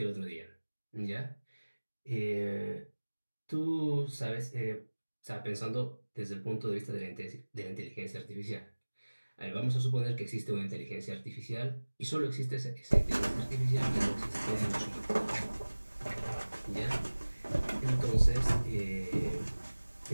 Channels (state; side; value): inverted; both; correlation -1.00